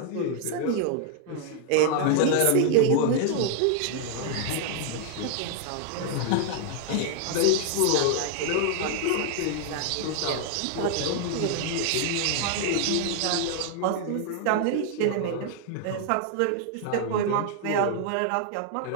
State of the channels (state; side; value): different; both; correlation 0.00